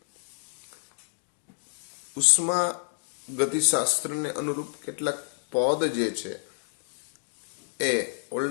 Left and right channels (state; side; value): silent; right; digital silence